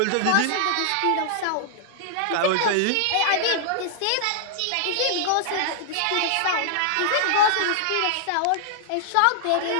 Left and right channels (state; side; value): different; both; correlation -0.01